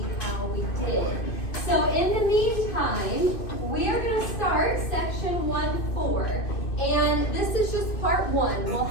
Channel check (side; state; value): right; late; 2.6 ms